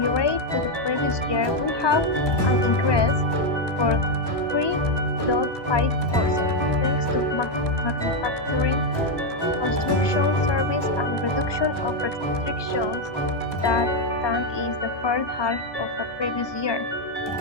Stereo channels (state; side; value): late; right; 1.2 ms